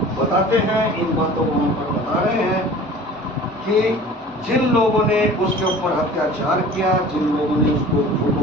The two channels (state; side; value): normal; both; correlation 0.43